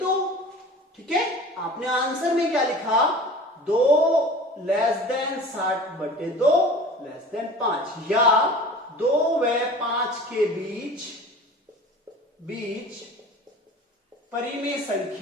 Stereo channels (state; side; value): normal; both; correlation 0.40